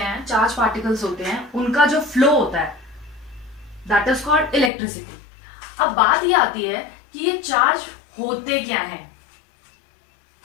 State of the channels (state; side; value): drops out; right; at 4.7 s